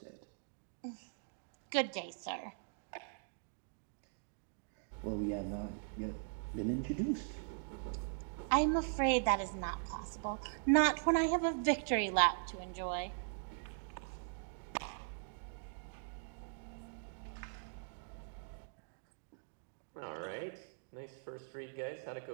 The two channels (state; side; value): silent; left; digital silence